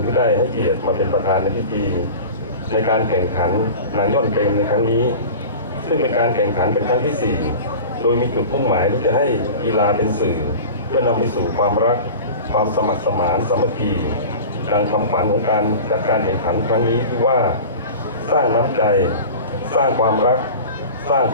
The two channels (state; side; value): inverted; both; correlation -0.35